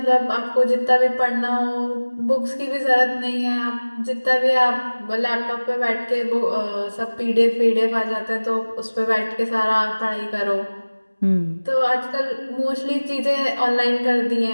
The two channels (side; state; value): both; inverted; correlation -1.00